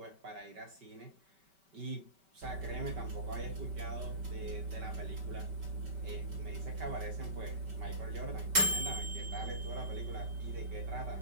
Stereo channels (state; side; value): late; left; 5.2 ms